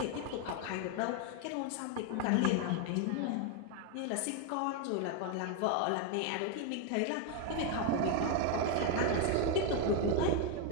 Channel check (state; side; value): different; both; correlation 0.01